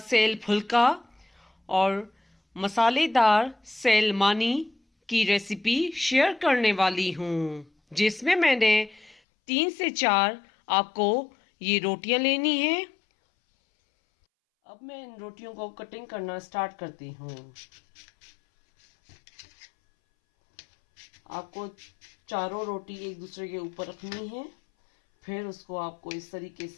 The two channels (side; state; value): right; drops out; at 9.2 s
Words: फुल्का और मसालेदार सेल मानी की रेसिपी शेयर करने वाली हूँ, जिसमें मैंने 3 से 4 आपको ये रोटियां लेनी हैं। अब मैं इन रोटियों को कटिंग करना स्टार्ट करती हूँ। आपको चारों रोटी एक दूसरे के ऊपर रखनी है, फिर उसको आपको इस तरीके